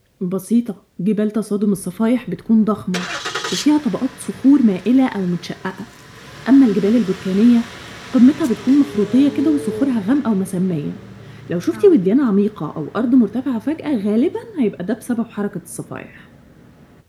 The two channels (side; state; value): both; identical; correlation 1.00